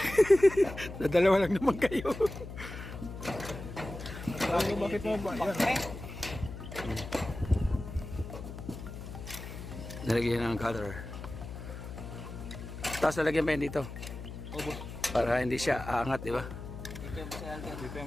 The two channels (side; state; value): left; noise; hum, 10 dB below the sound